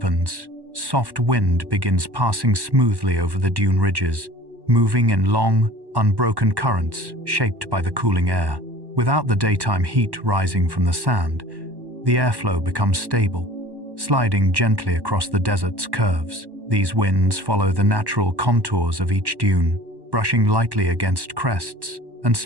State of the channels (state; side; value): late; left; 1.1 ms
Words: soft wind begins passing smoothly over the dune ridges, moving in long, unbroken currents shaped by the cooling air. Without the daytime heat rising from the sand, the airflow becomes stable, sliding gently across the desert's curves. These winds follow the natural contours of each dune, brushing lightly against crests and